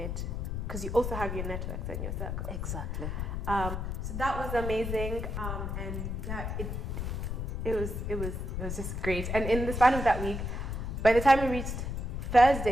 because you also have your networks and your circle. Exactly. So that was amazing, and yeah, it was just great. And in the span of that week, by the time we reached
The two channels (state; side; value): noise; left; rumble, 3 dB below the sound